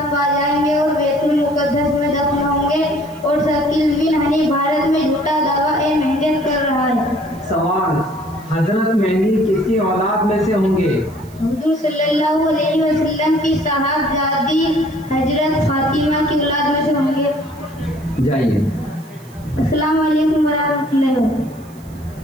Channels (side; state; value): right; noise; hiss, 27 dB below the sound